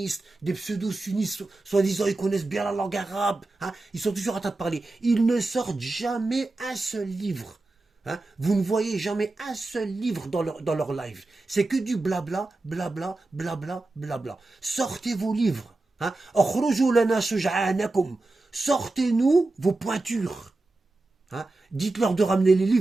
des pseudo-sunnistes, soi-disant ils connaissent bien la langue arabe, hein? Ils sont toujours en train de parler. Ils ne sortent jamais un seul livre. Hein? Vous ne voyez jamais un seul livre dans leur live. C'est que du blabla, blabla, blabla, blabla. Sortez vos livres. Hein? Sortez-nous vos pointures. Hein? Dites-leur de ramener les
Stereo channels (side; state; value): left; quieter; 3.1 dB